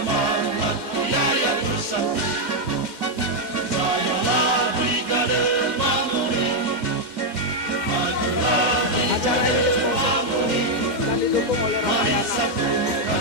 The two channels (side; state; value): left; late; 2.3 ms